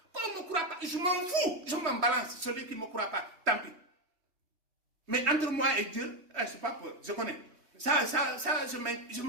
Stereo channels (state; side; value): late; left; 3.1 ms